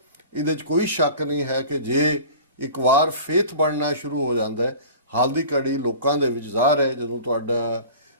ਇਹਦੇ 'ਚ ਕੋਈ ਸ਼ੱਕ ਨਹੀਂ ਹੈ ਕਿ ਜੇ ਇੱਕ ਵਾਰ ਫੇਥ ਬਣਨਾ ਸ਼ੁਰੂ ਹੋ ਜਾਂਦਾ ਹੈ, ਹਾਲ ਦੀ ਘੜੀ ਲੋਕਾਂ ਦੇ ਵਿੱਚ ਜ਼ਾਹਰ ਹੈ ਜਦੋਂ ਤੁਹਾਡਾ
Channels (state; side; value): inverted; both; correlation -0.40